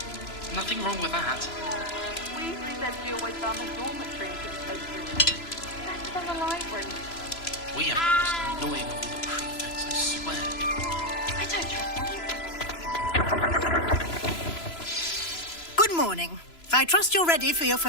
Nothing wrong with that. Weasley said she always found the dormitory in his poster room. Better than the library. We have the most annoying of all the prefects, I swear. I don't trust them. Good morning. I trust you're ready for your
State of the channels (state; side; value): late; right; 3.0 ms